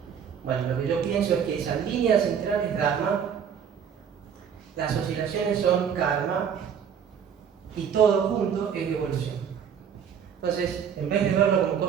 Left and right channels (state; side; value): quieter; left; 7.8 dB